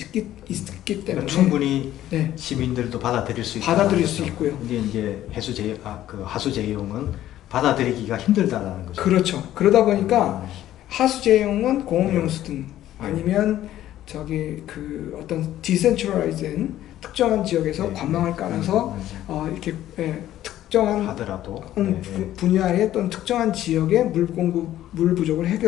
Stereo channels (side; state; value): right; quieter; 13.1 dB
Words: 때문에 그러니까 충분히 네. 시민들도 받아들일 수 있다. 받아들일 수 있고요. 근데 이제 하수제용은 받아들이기가 힘들다라는 거죠. 그렇죠. 그러다 보니까 하수제용은 공업용수든 아니면 어떤 디센트럴라이즈된 특정한 지역에서 관망을 깔아서 이렇게 특정한 하더라도 분야의 또는 특정한 지역의 물 부족을